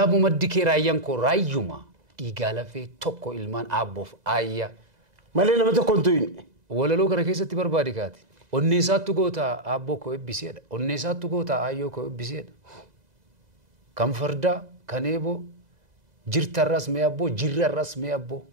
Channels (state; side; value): late; left; 2.0 ms